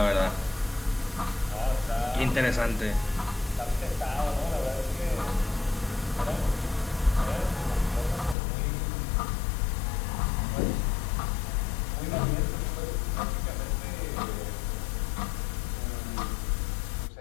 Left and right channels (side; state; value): right; drops out; at 8.3 s